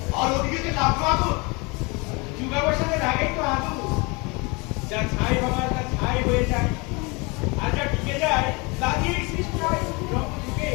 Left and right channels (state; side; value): quieter; right; 28.1 dB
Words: আর ওদিকে যে লাগলো আগুন যুগাবসানের আগেই তো আগুন যা ছাই হবার তা ছাই হয়ে যায় আর যা ঢুকে যায় তা দিয়েই সৃষ্টি হয় রঙ ঢুকে